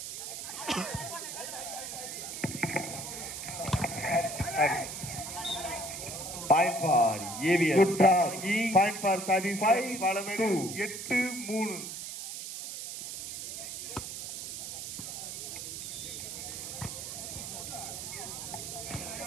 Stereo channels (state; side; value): noise; right; hiss, 7 dB below the sound